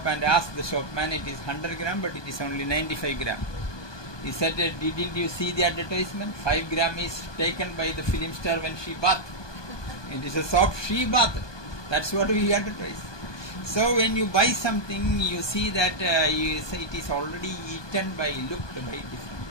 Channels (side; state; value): right; late; 1.2 ms